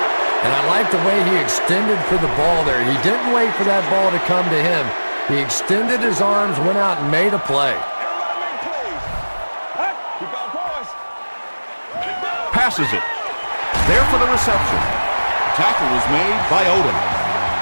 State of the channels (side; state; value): both; inverted; correlation -1.00